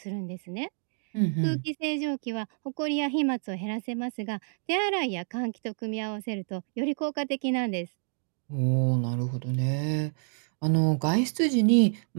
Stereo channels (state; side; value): silent; left; 56 dB below the other